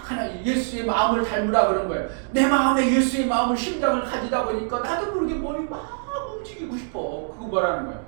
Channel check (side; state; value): left; silent; digital silence